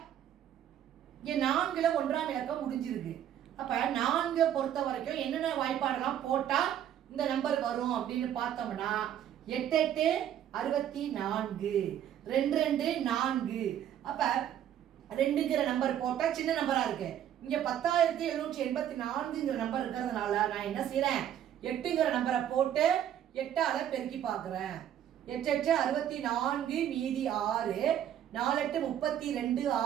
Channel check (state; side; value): quieter; left; 10.5 dB